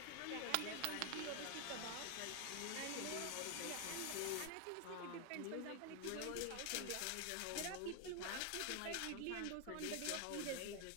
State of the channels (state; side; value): different; both; correlation 0.01